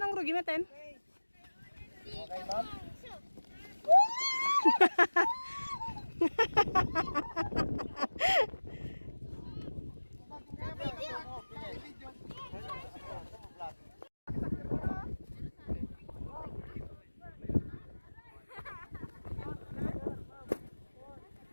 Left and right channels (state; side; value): inverted; both; correlation -1.00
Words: rugi meten. Okay, ma'am?